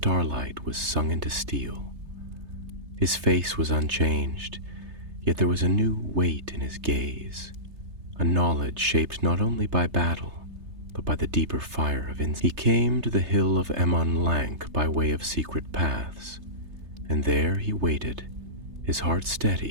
was sung into steel. His face was unchanged, yet there was a new weight in his gaze, a knowledge shaped not only by battle, but by the deeper fire of instinct. He came to the hill of Emon Lank by way of secret paths, and there he waited, his heart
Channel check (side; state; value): left; late; 3.3 ms